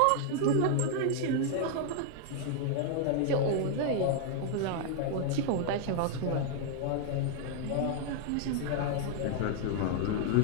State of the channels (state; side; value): different; both; correlation -0.01